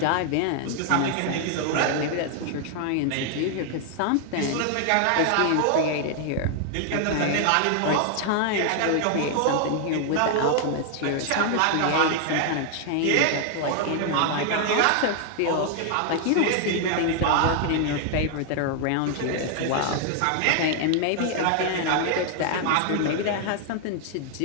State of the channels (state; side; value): different; both; correlation 0.00